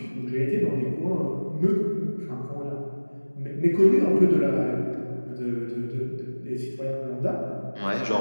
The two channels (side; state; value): both; inverted; correlation -1.00